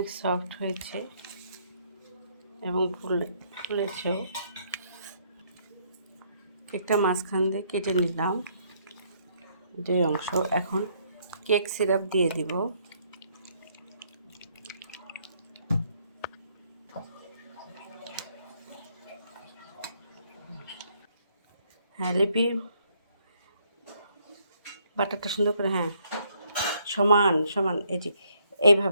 সফট হয়েছে এবং ফুলেছেও। কেকটা মাঝখান দিয়ে কেটে নিলাম 2 অংশ। এখন কেক সিরাপ দিয়ে দিব। হ্যাঁ লিপি, বাটারটা সুন্দর করে, হ্যাঁ সমান সমান, এই যে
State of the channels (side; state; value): both; inverted; correlation -0.69